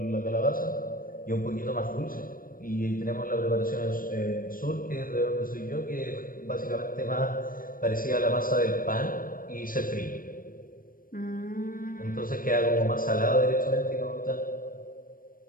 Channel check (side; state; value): right; late; 0.41 ms